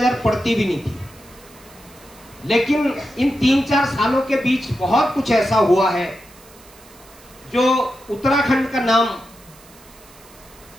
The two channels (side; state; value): right; noise; hiss, 24 dB below the sound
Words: पड़ती भी नहीं थी। लेकिन इन 3-4 सालों के बीच बहुत कुछ ऐसा हुआ है जो उत्तराखंड का नाम